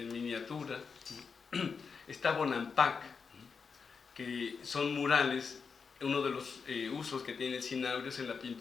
miniatura, ¿no? Está Bonampak, ¿no? Que son murales. Uno de los usos que tiene el cinabrio es en la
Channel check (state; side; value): quieter; right; 5.5 dB